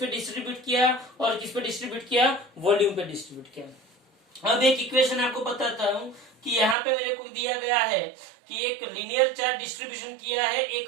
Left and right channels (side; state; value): left; drops out; at 6.8 s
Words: डिस्ट्रीब्यूट किया, और किस पे डिस्ट्रीब्यूट किया, वॉल्यूम पे डिस्ट्रीब्यूट किया। अब एक इक्वेशन आपको बताता हूं कि यहाँ पे मेरे को दिया गया है कि एक लिनियर चार्ज डिस्ट्रीब्यूशन किया है एक